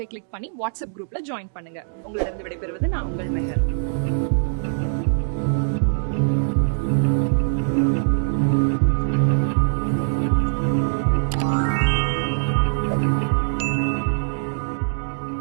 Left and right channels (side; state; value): left; silent; digital silence